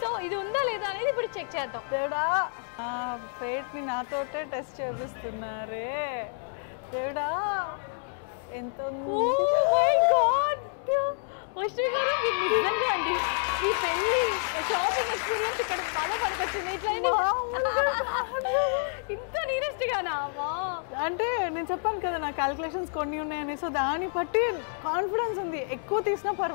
ఇది ఉందా లేదా అనేది ఇప్పుడు చెక్ చేద్దాం. దేవుడా, ఫేట్ని నాతోటే టెస్ట్ చేపిస్తున్నారే. దేవుడా, ఎంత వైష్ణవి గారు, మీరు నిజంగా అండి ఈ పెళ్లి షాపింగ్ ఎక్స్పీరియన్స్ ఇక్కడ బాగా పనికొచ్చింది. ఇట్లా ఇంత నీరెస్ట్ గానా? అంటే నేను చెప్పాను కదా నా క్యాలిక్యులేషన్స్ కొన్ని ఉన్నాయని, సో దాన్ని బట్టి కాన్ఫిడెన్స్ ఉంది. ఎక్కువ తీసినా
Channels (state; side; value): silent; right; digital silence